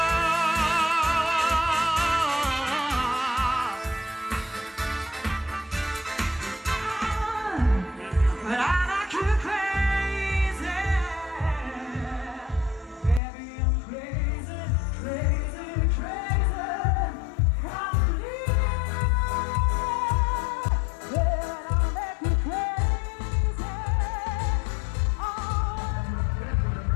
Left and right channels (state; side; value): drops out; right; at 13.2 s